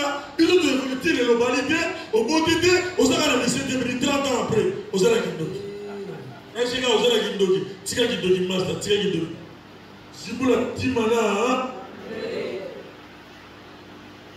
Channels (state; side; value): identical; both; correlation 1.00